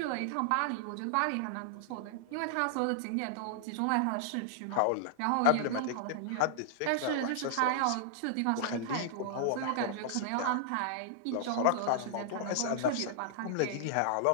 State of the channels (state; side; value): different; both; correlation -0.01